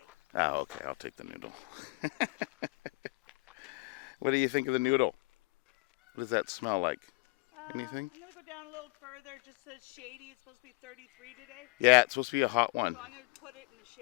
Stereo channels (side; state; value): right; quieter; 27.3 dB